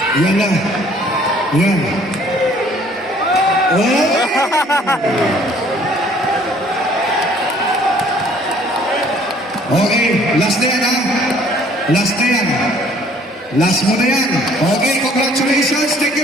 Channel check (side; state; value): both; normal; correlation 0.58